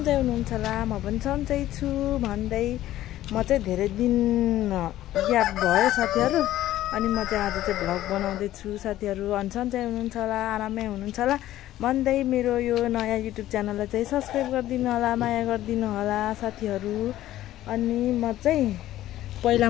हुनुहुन्छ होला म पनि सन्चै छु भन्दै म चाहिँ धेरै दिन ग्याप भयो साथीहरू अनि म चाहिँ आज चाहिँ भ्लग बनाउँदै छु साथीहरू अनि सन्चै हुनुहुन्छ होला आरामै हुनुहुन्छ होला भन्दै मेरो यो नयाँ युट्युब च्यानललाई चाहिँ सब्स्क्राइब गरिदिनु होला माया गरिदिनु होला साथीहरू। अनि म चाहिँ पहिला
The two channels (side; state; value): right; quieter; 14.0 dB